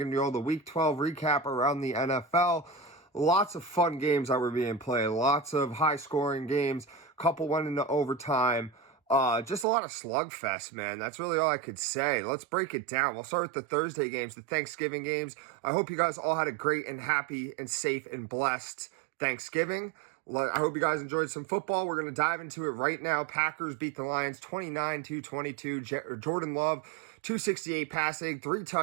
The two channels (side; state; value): left; drops out; at 9.7 s